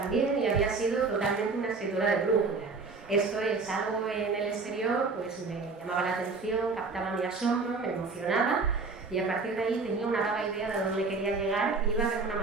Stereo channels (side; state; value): left; quieter; 4.2 dB